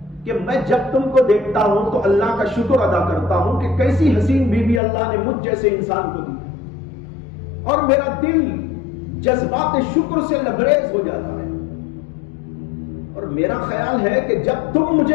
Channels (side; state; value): right; drops out; at 4.8 s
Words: کہ میں جب تم کو دیکھتا ہوں تو اللہ کا شکر ادا کرتا ہوں کہ کیسی حسین بیوی اللہ نے مجھ جیسے انسان کو دی، اور میرا دل جذبات شکر سے لبریز ہو جاتا ہے، اور میرا خیال ہے کہ جب تم